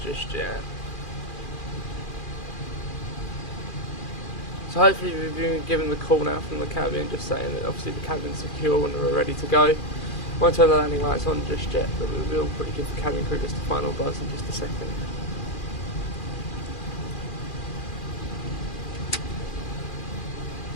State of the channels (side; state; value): right; late; 2.4 ms